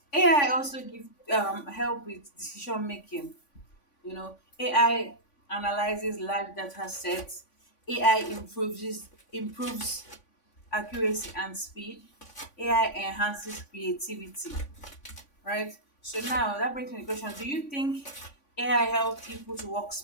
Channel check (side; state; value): right; late; 3.5 ms